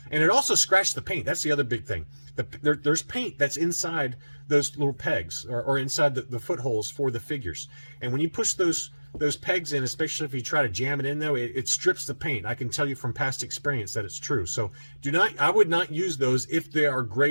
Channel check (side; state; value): both; inverted; correlation -1.00